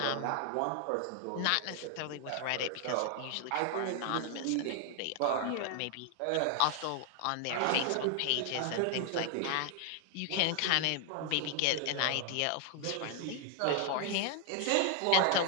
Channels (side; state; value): both; different; correlation 0.00